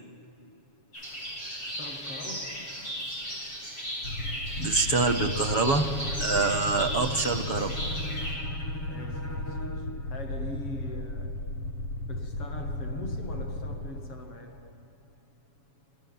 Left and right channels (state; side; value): late; right; 7.2 ms